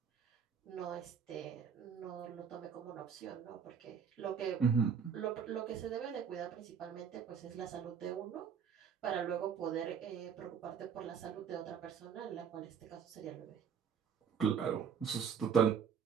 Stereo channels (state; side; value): quieter; left; 7.1 dB